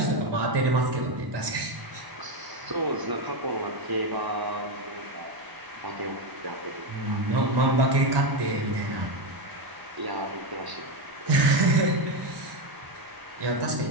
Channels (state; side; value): late; left; 1.0 ms